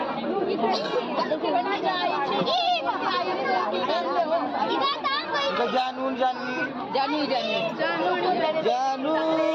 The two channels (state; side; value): identical; both; correlation 1.00